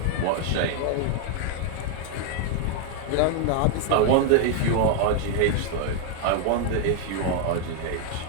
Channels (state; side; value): different; both; correlation 0.00